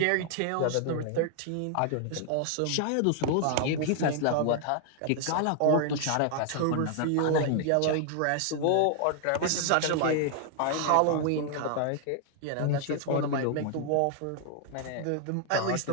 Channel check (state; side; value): different; both; correlation 0.00